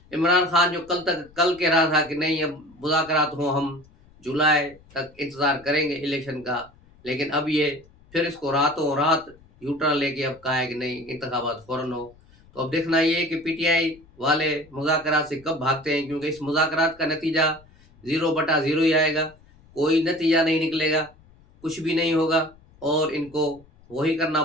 इमरान खान जो कल कह रहा था कि नहीं, अब मुज़ाकरात हों, हम जुलाई तक इंतज़ार करेंगे इलेक्शन का, लेकिन अब ये फिर इसको रातों रात यू टर्न लेके अब कहा है कि नहीं, इंतखाबात फ़ौरन हो। तो अब देखना ये है कि पीटीआई वाले मुज़ाकरात से कब भागते हैं, क्योंकि इस मुज़ाकरात का नतीजा 0/0 ही आएगा। कोई नतीजा नहीं निकलेगा, कुछ भी नहीं होगा, और इनको वही करना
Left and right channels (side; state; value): left; noise; rumble, 27 dB below the sound